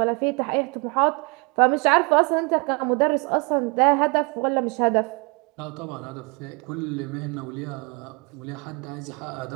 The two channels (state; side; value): quieter; left; 31.8 dB